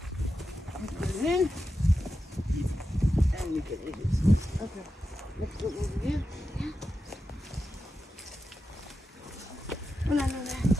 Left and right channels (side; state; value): both; normal; correlation 0.90